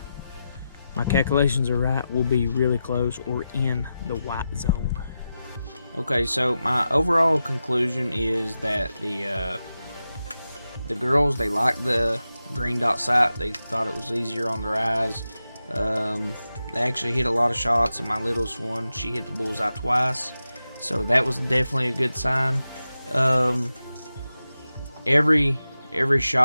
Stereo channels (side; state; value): both; inverted; correlation -0.91